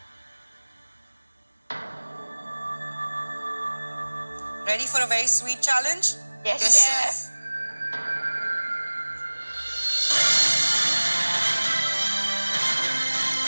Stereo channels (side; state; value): both; inverted; correlation -1.00